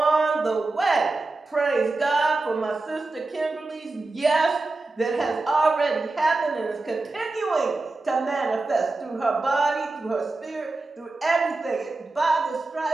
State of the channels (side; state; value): left; quieter; 3.3 dB